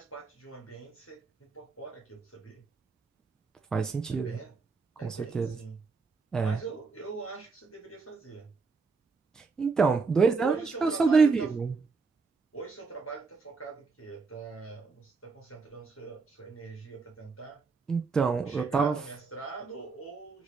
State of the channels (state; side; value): quieter; left; 4.6 dB